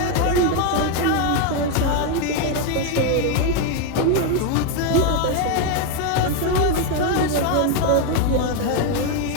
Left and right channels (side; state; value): both; different; correlation 0.01